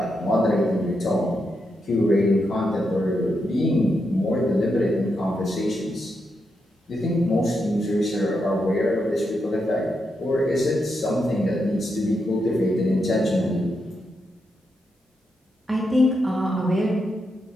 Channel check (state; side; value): normal; both; correlation 0.84